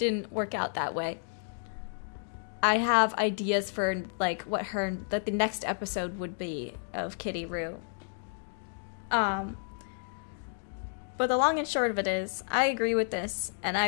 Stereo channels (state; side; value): silent; right; digital silence